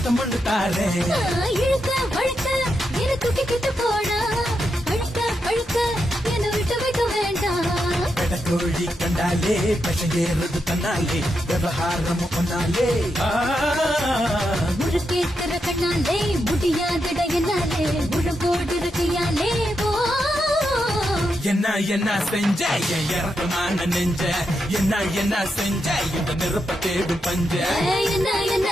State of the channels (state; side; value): normal; both; correlation 0.84